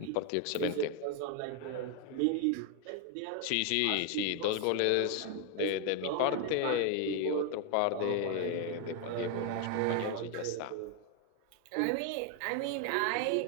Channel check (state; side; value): different; both; correlation 0.01